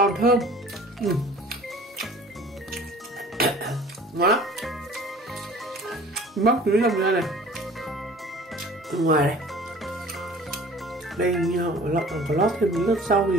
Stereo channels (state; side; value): normal; both; correlation 0.47